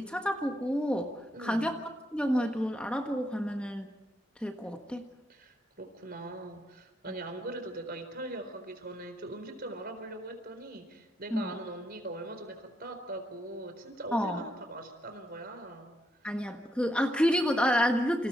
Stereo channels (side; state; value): both; normal; correlation 0.78